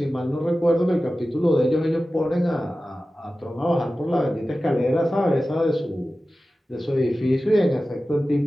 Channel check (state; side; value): normal; both; correlation 0.95